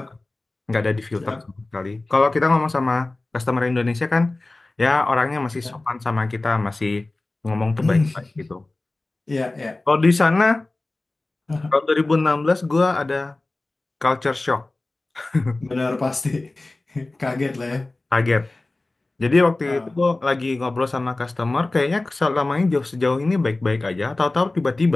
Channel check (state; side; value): quieter; right; 3.0 dB